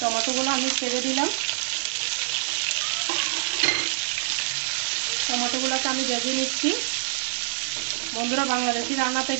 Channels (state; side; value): silent; left; digital silence